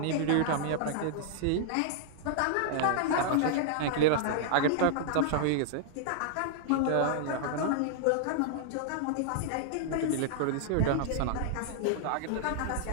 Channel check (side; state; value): both; different; correlation -0.01